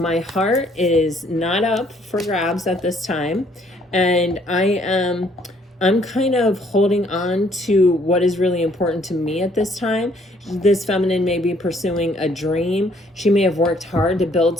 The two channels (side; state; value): both; normal; correlation 0.64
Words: heart is not up for grabs at this time. And I'm kind of holding on to what is really important to me at this time. this feminine may be pursuing a dream. She may have worked hard to build